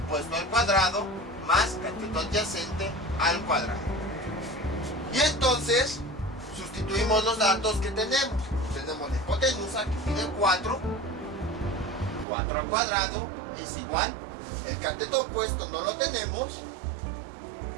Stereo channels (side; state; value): left; drops out; at 12.2 s